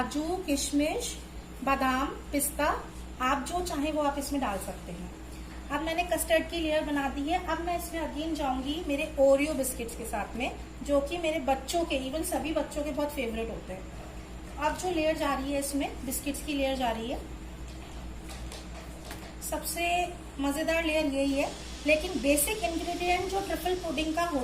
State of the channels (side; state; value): both; identical; correlation 1.00